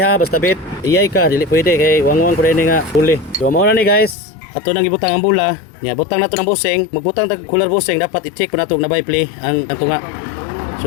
basta bit. Iyay ka, dili pwede kay wangwang ko rin nga pulley. So mao na ni guys. Ato nang ibutang ang bula. Nya butang nato ng busing, magbutang tag cooler busing dapat i-check ko nato na by play ang tunga.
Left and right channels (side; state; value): right; drops out; at 4.2 s